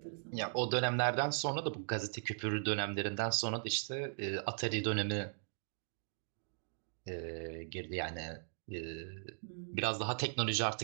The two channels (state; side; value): silent; left; digital silence